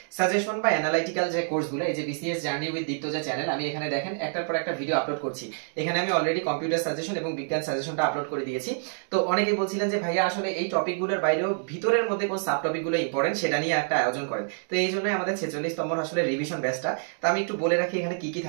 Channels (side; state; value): left; silent; digital silence